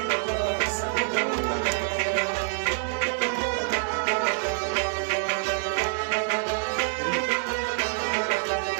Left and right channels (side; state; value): left; silent; 61 dB below the other